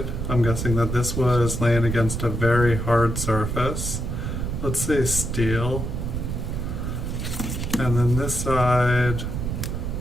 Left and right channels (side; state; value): right; noise; rumble, 3 dB below the sound